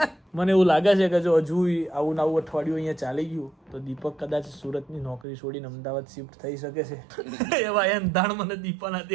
મને એવું લાગે છે કે જો હજુ આવું આવું અઠવાડિયું અહીંયા ચાલી ગયું તો દીપક કદાચ સુરતની નોકરી છોડીને અમદાવાદ શિફ્ટ થઈ શકે છે. એવા એંધાણ મને દીપાના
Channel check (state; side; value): drops out; left; at 5.2 s